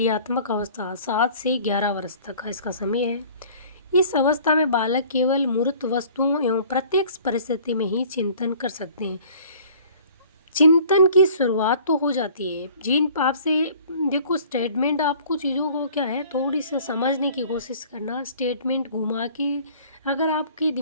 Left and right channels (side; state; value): both; inverted; correlation -0.50